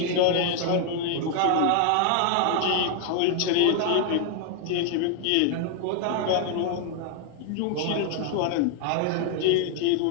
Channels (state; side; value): different; both; correlation 0.00